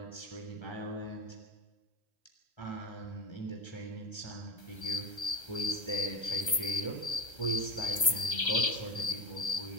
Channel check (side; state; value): right; late; 1.3 ms